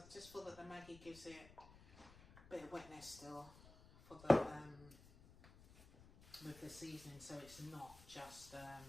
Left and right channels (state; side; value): noise; left; rumble, 20 dB below the sound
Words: just feel that the Maggi gives it a bit of wetness still for the with the seasoning, so it's not just that